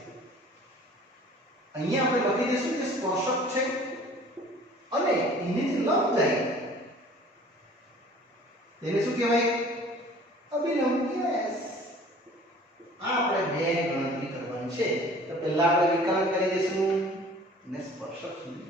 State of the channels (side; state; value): both; normal; correlation 0.49